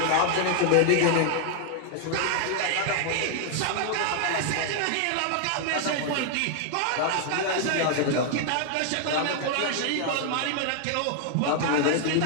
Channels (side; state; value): both; different; correlation 0.00